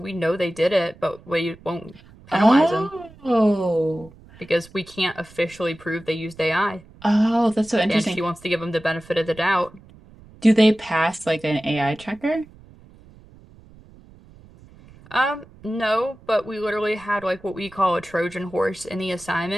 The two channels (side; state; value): right; noise; rumble, 23 dB below the sound